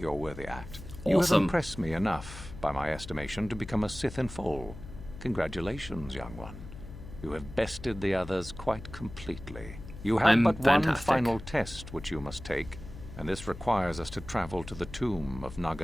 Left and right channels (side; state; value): left; noise; hum, 13 dB below the sound